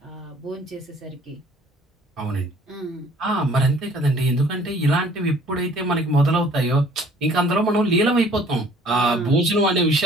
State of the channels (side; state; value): both; normal; correlation 0.55